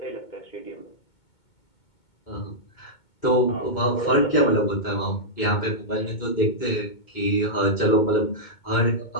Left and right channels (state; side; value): late; right; 2.2 ms